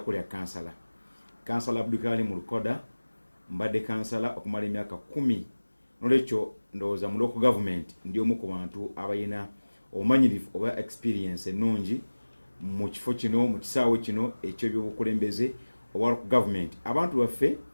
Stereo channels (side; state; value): both; inverted; correlation -1.00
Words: kansala Abdulkarim Lukoda. Mbadde kansala okumala emyaka 10. Nolwekyo ndowooza mu local government ndi omu ku bantu abalina obumanyirivu oba experience ennungi mu kifo kino, mu kisaawe kino eky'ebyobukulembeze oba local government. Abantu baffe